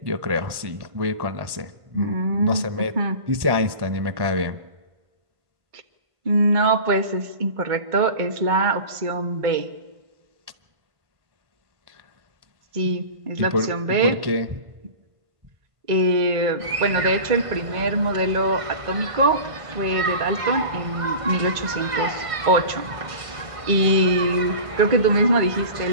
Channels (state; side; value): late; left; 1.5 ms